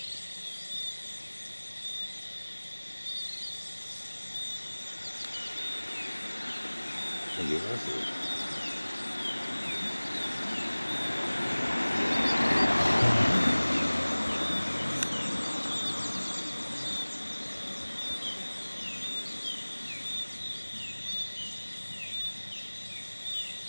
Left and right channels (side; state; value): both; inverted; correlation -1.00